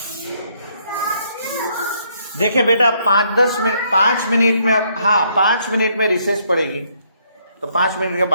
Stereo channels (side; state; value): both; inverted; correlation -0.70